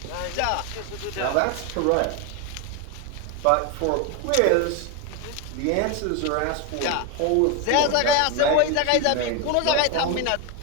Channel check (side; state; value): both; different; correlation 0.02